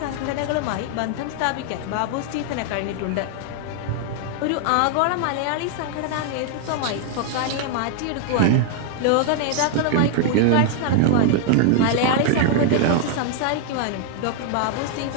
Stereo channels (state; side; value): different; both; correlation 0.00